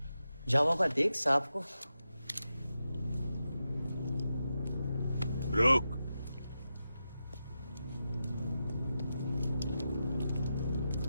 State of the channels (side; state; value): both; inverted; correlation -0.89